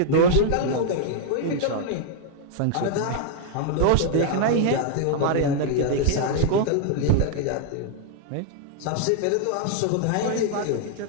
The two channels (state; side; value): different; both; correlation 0.00